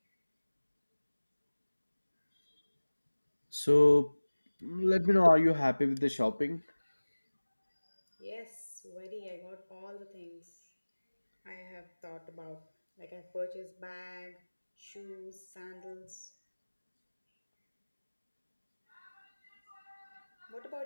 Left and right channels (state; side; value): inverted; both; correlation -1.00